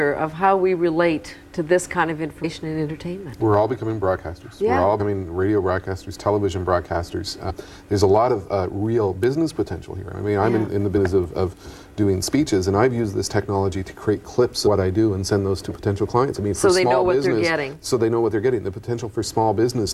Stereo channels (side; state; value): both; identical; correlation 1.00